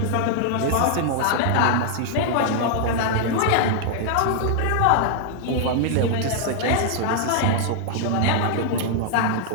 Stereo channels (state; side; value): different; both; correlation 0.00